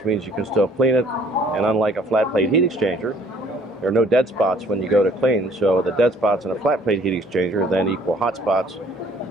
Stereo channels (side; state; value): both; normal; correlation 0.57